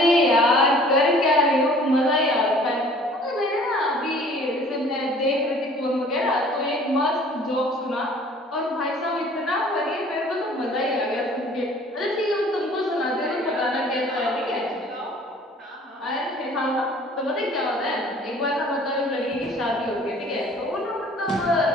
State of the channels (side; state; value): both; normal; correlation 0.52